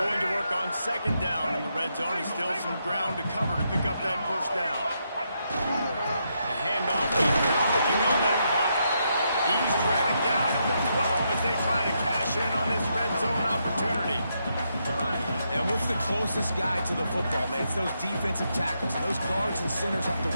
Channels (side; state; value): both; inverted; correlation -0.80